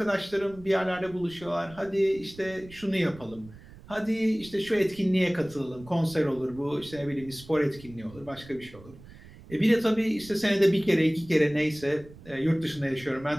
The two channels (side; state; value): right; noise; rumble, 20 dB below the sound